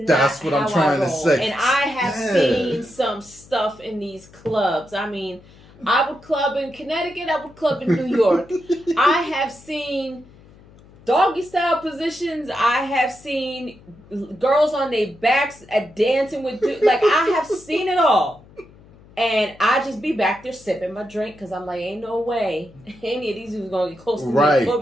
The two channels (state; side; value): noise; left; hum, 24 dB below the sound